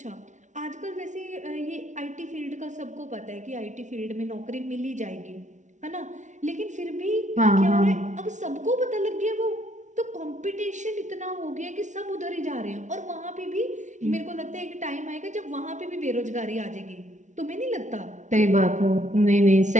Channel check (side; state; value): left; late; 0.36 ms